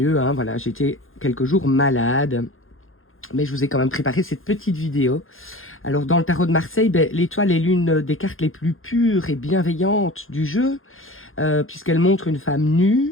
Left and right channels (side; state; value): right; late; 0.60 ms